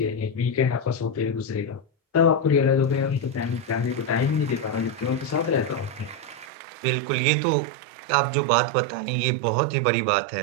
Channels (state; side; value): drops out; left; at 6.5 s